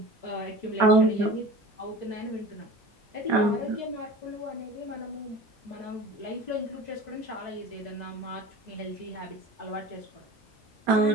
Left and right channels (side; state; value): both; normal; correlation 0.38